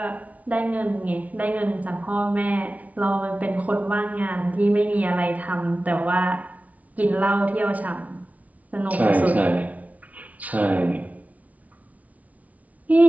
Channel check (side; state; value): left; late; 0.070 ms